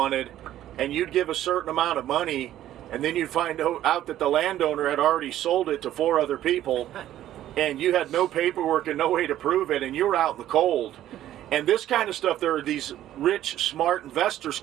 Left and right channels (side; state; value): left; quieter; 12.7 dB